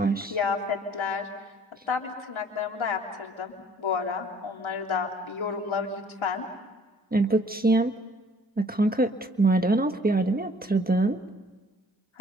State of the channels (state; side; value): normal; both; correlation 0.56